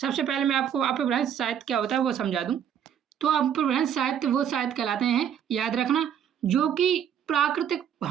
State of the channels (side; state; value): left; quieter; 8.9 dB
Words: पहले मैं आपको अपभ्रंश साहित्य क्या होता है वो समझा दूं। तो अपभ्रंश साहित्य वो साहित्य कहलाते हैं, याद रखना, जो कि प्राकृतिक